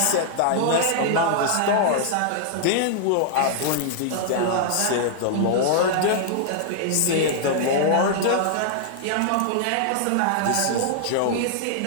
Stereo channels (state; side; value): different; both; correlation -0.01